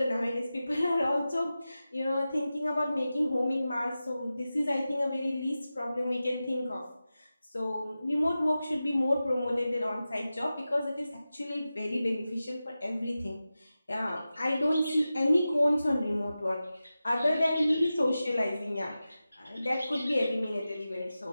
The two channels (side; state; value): both; inverted; correlation -0.94